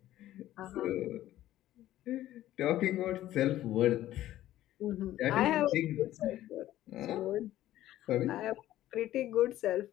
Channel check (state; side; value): quieter; right; 13.9 dB